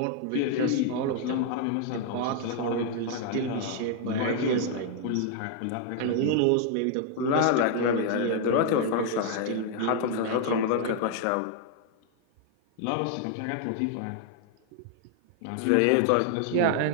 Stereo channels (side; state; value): both; different; correlation 0.00